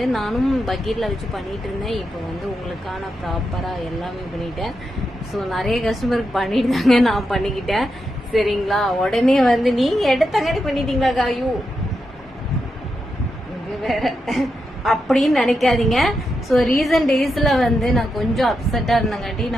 நானும் பக்கெட்டில் வச்சு பண்ணிட்டு இருந்தேன். இப்போ வந்து உங்களுக்கான ப்ராப்பராக எல்லாமே பண்ணிட்டேன். ஸோ நிறைய கஸ்டமருக்கு பண்ணிட்டு தாங்க நான் பண்ணிக்கிட்டேன். சரிங்களா? உடனே வந்து நீங்கள் எடுத்தங்காட்டி பண்ணிட்டீங்களா காயு இது வேற அப்படின்னு நினைக்காதீங்க. ஸோ ரீசன்ட் டேஸ்ல வந்து நான் கொஞ்சம் அப்செட்டா இருந்தங்காட்டி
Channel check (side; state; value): both; normal; correlation 0.86